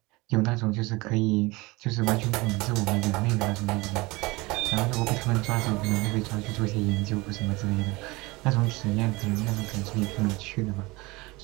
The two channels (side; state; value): left; quieter; 23.1 dB